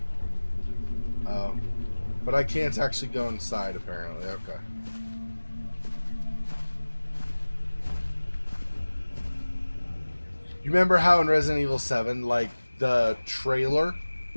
Oh. But I can't actually go inside, apparently. Okay. You remember how in Resident Evil 7, like, the trailer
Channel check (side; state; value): both; inverted; correlation -1.00